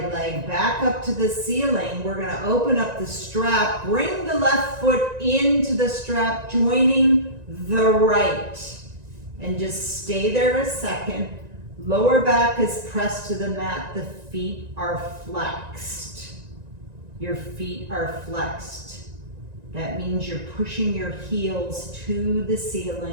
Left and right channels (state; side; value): late; left; 1.9 ms